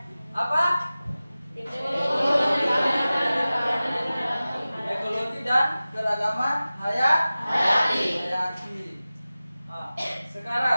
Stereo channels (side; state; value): both; inverted; correlation -0.96